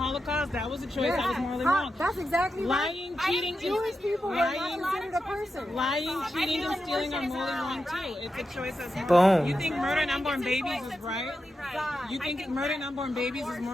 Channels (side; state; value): both; normal; correlation 0.89